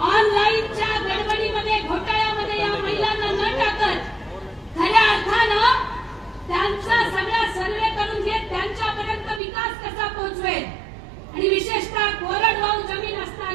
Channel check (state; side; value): drops out; left; at 9.4 s